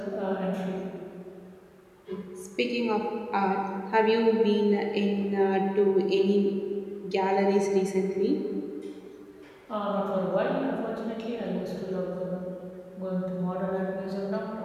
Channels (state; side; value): identical; both; correlation 1.00